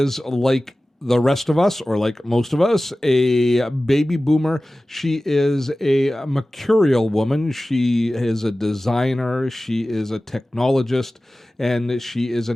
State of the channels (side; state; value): both; normal; correlation 0.96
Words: like the rest of us, or like most of us, a baby boomer. She is a mercurial woman. She is a designer. She is a technologist, and she is